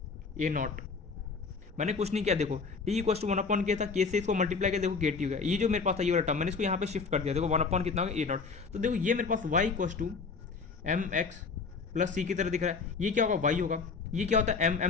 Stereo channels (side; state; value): right; quieter; 4.8 dB